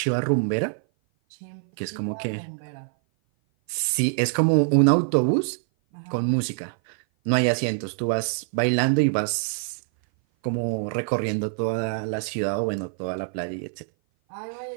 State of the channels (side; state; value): left; silent; 57 dB below the other